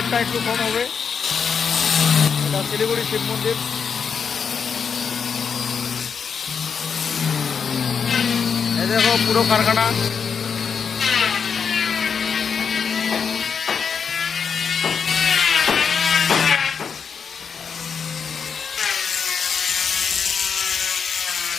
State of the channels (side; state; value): right; quieter; 6.4 dB